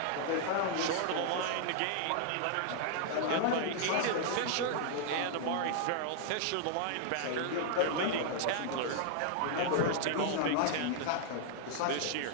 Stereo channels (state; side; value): different; both; correlation -0.01